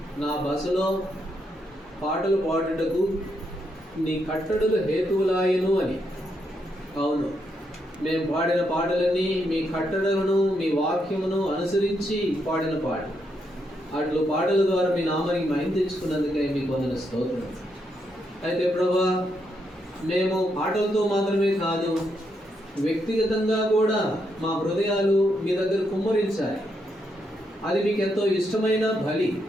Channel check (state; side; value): normal; both; correlation 0.79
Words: నా బసలో పాటలు పాడుటకు నీ కట్టడులు హేతువులాయను అని. అవును, మేము పాడిన పాటలన్నీ మీ కట్టడలను, మీ వాక్యమును అనుసరించి పాడిన పాటలు. అట్లు పాటల ద్వారా మీ నామానికి మహిమ తెచ్చుకున్నందుకే మీకు వందన స్తోత్రం. అయితే ప్రభా, మేము పాటలతో మాత్రమే కాదు, వ్యక్తిగతంగా కూడా మా హృదయాలు మీ దగ్గర కుమ్మరించాలి. అది మీకు ఎంతో ఇష్టమైన బలి.